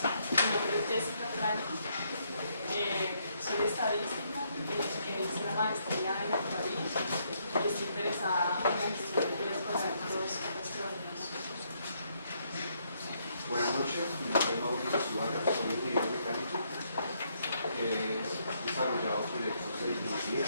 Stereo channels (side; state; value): both; inverted; correlation -0.73